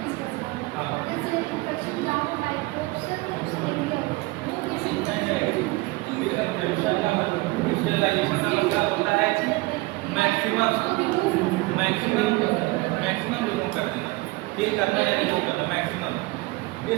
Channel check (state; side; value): quieter; left; 22.5 dB